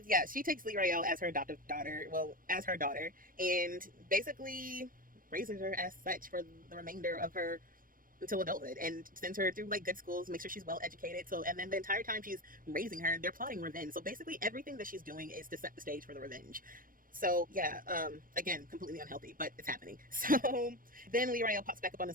yeah, she takes Lee Rayo as her adoptive daughter, well, as her daughter, and basically raises her as such for the remainder of her until adulthood, and sends her through like good schools, make sure she's well educated. So, and then the entire time she's raising her, they're plotting revenge. So basically everything that she's doing is to set the stage for the revenge. So yeah, again, completely unhealthy, but it's happening. So then Lee Rayo pops back up on the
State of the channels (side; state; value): left; late; 0.41 ms